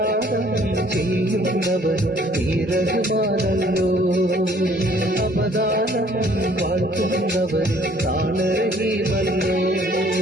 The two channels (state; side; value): normal; both; correlation 0.59